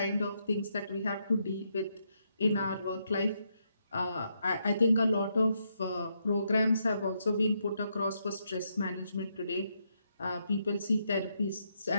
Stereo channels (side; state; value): both; inverted; correlation -0.79